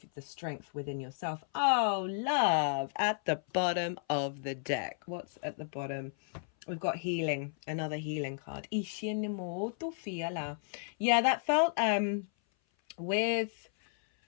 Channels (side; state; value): right; silent; 55 dB below the other